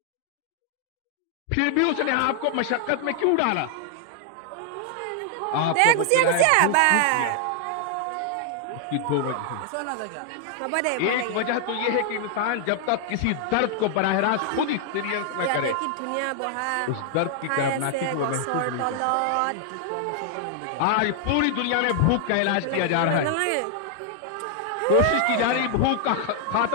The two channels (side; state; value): both; different; correlation 0.00